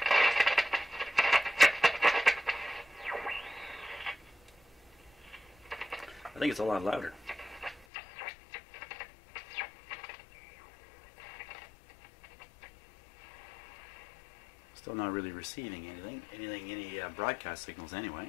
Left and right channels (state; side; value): drops out; right; at 7.9 s